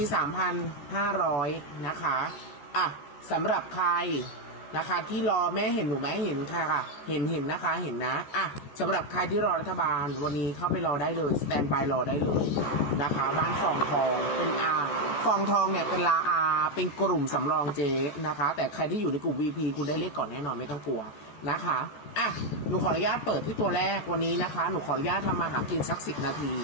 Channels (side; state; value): right; late; 14 ms